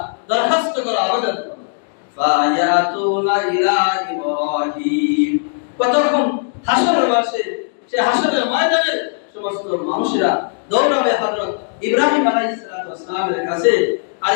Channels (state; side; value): silent; right; digital silence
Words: দরখাস্ত করো, আবেদন করো। ফায়াতুনা ইলা ইব্রাহিম, কতক্ষণ হাসরের মাঠে, সে হাসরের ময়দানের সমস্ত মানুষেরা দৌড়াবে হযরত ইব্রাহিম আলাইহিস সালামের কাছে, আর